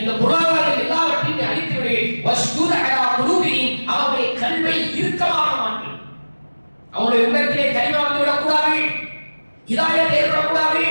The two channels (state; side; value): inverted; both; correlation -1.00